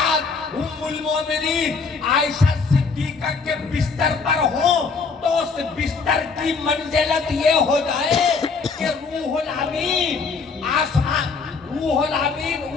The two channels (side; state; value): right; quieter; 4.8 dB